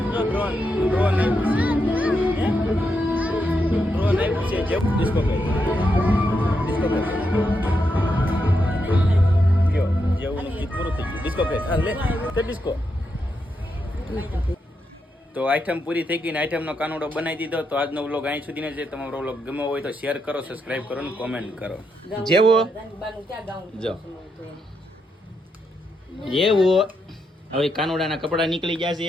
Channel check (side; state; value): both; normal; correlation 0.82